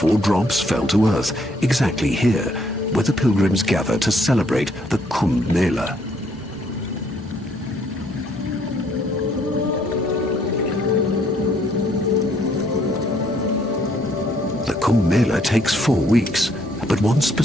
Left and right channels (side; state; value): both; normal; correlation 0.67